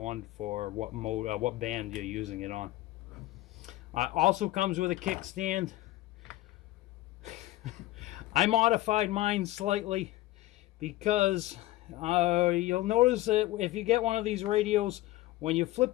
for what mode, what band you're using it on. Also comes with a kickstand. I modified mine slightly because you'll notice that if you get one of these radios, when you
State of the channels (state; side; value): quieter; right; 17.1 dB